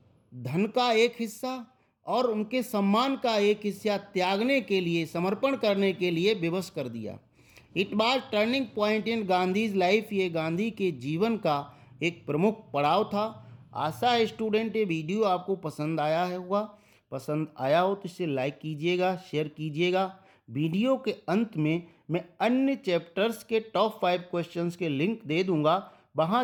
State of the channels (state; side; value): identical; both; correlation 1.00